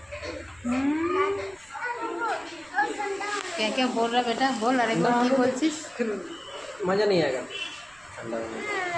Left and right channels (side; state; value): right; noise; rumble, 29 dB below the sound